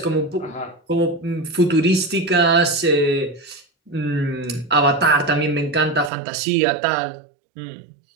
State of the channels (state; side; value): drops out; left; at 6.1 s